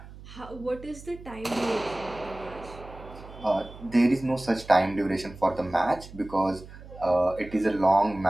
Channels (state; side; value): noise; right; hum, 17 dB below the sound